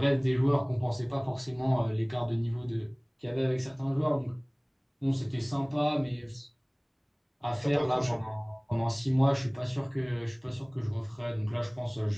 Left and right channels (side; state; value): both; identical; correlation 1.00